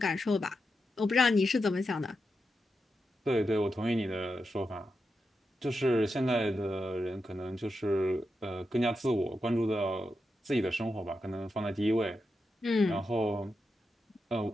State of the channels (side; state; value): both; normal; correlation 0.87